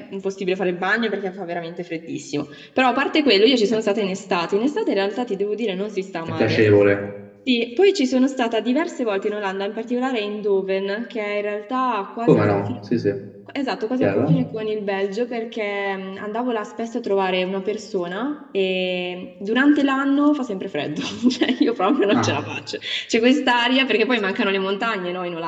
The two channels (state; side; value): identical; both; correlation 1.00